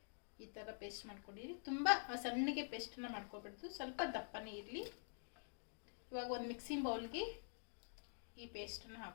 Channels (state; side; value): silent; right; digital silence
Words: ಈ ಥರ ಪೇಸ್ಟ್ ಮಾಡ್ಕೊಂಡಿರಿ. ತುಂಬ ಸಣ್ಣಗೆ ಪೇಸ್ಟನ್ನು ಮಾಡ್ಕೊಬಿಡ್ತು, ಸ್ವಲ್ಪ ದಪ್ಪನೇ ಇರಲಿ. ಇವಾಗ ಒಂದು ಮಿಕ್ಸಿಂಗ್ ಬೌಲ್ಗೆ ಈ ಪೇಸ್ಟನ್ನು